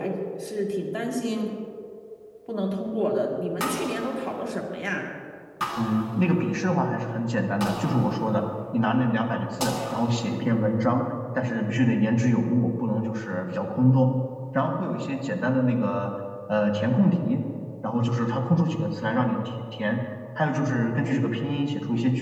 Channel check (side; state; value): both; identical; correlation 1.00